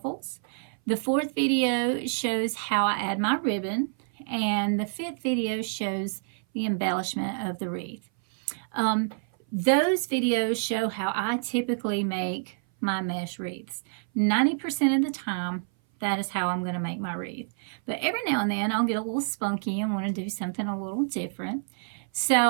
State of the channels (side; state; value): left; silent; 58 dB below the other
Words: The fourth video shows how I add my ribbon. And the fifth video shows the embellishment of the wreath. Those videos show how I typically make my mesh wreaths. 90% of the time, that is how I'm going to make my wreath. But every now and then, I'll get a little spunky and want to do something a little different. So